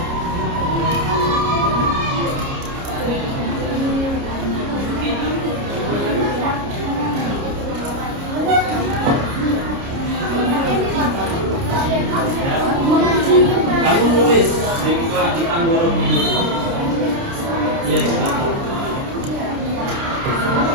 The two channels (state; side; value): late; left; 29 ms